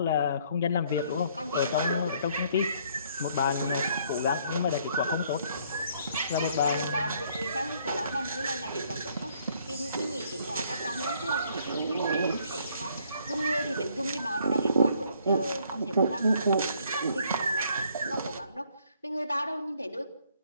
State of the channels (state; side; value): inverted; both; correlation -0.64